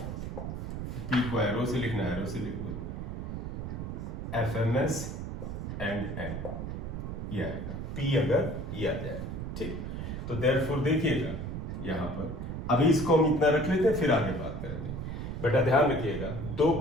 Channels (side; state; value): right; noise; rumble, 5 dB below the sound